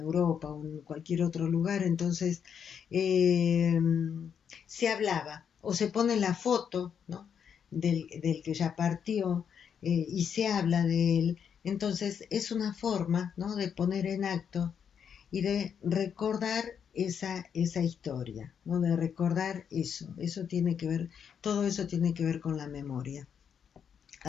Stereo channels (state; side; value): quieter; right; 7.6 dB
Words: o en cualquier otro lugar, entonces eh, se hablaba o se pone la foto, ¿no? Del que ya partió y se habla de él. Entonces es una forma, ¿no?, de poner en acto y de recordar esa historia, ¿no?, de recordar eso tiene que ver, todo eso tiene que ver con la memoria.